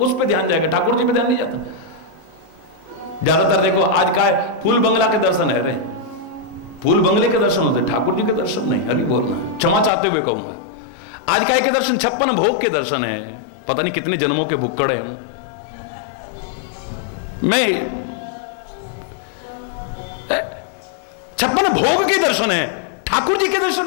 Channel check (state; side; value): drops out; right; at 9.9 s